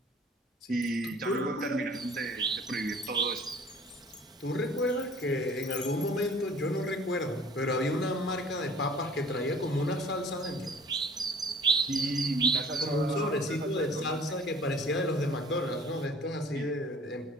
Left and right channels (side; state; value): both; normal; correlation 0.49